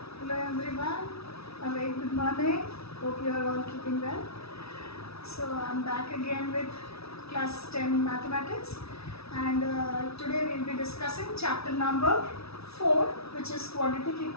everyone, a very good morning. Hope you are all keeping well. So I'm back again with class 10 mathematics, and today we'll be discussing chapter number 4, which is quadratic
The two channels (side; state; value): right; late; 0.78 ms